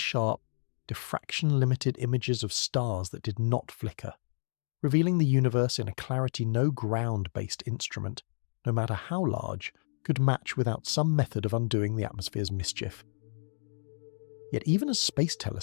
diffraction-limited images of stars that did not flicker, revealing the universe in a clarity no ground-based instrument, no matter how large, could match without some method of undoing the atmosphere's mischief. Yet even as space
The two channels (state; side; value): silent; right; digital silence